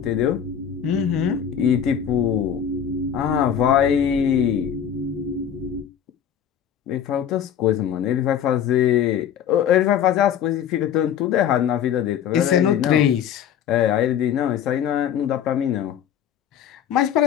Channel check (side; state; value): right; quieter; 9.0 dB